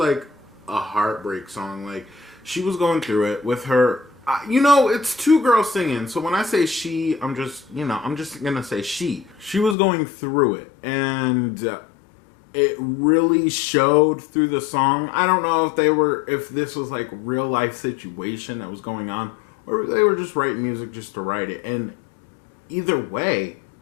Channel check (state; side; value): drops out; right; at 9.8 s